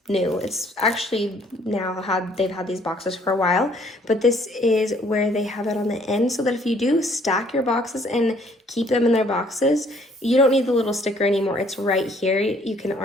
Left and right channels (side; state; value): both; normal; correlation 0.61